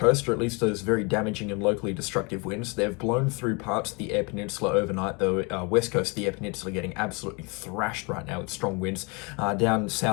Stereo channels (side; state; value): right; quieter; 30.3 dB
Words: or at least those very damaging and locally destructive winds. They've blown through parts of the Eyre Peninsula overnight, the west coast of the Eyre Peninsula getting absolutely thrashed right now with strong winds. Down